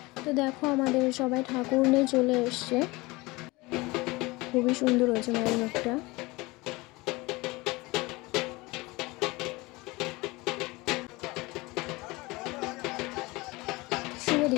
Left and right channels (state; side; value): quieter; right; 22.8 dB